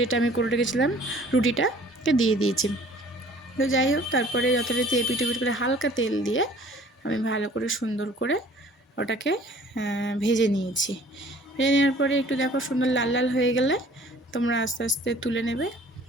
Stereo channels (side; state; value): both; normal; correlation 0.52